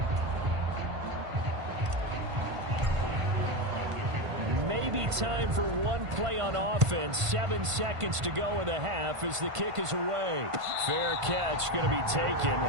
be time for one play on offense. 7 seconds to go in the half as the kick is away. Fair catch going to be taken,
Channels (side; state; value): left; late; 1.5 ms